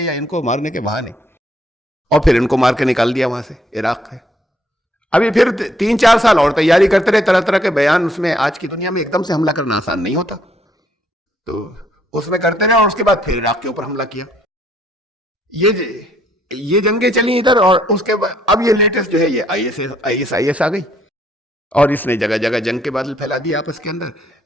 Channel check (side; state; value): both; normal; correlation 0.68